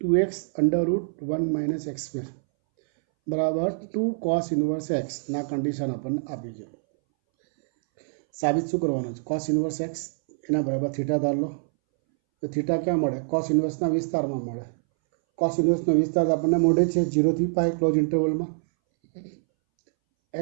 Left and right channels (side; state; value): left; silent; 61 dB below the other